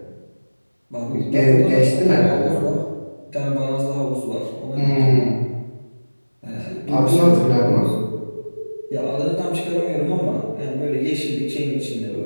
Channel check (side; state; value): both; inverted; correlation -1.00